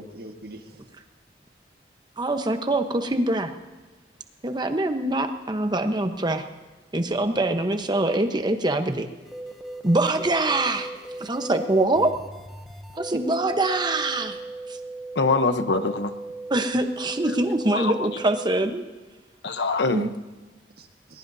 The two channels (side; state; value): both; normal; correlation 0.45